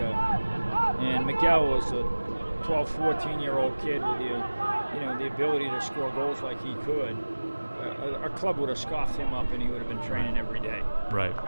and Miguel was a 12, 14-year-old kid with the ability to score goals like he could, a club would have scoffed him up and he would have been training every day. Right.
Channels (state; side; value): inverted; both; correlation -1.00